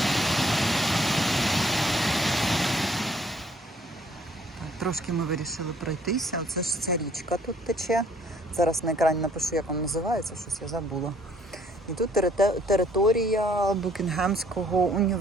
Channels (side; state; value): both; normal; correlation 0.61